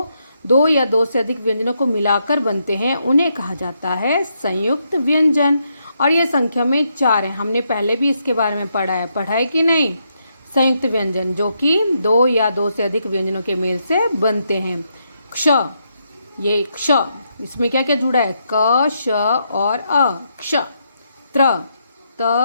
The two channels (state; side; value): inverted; both; correlation -0.79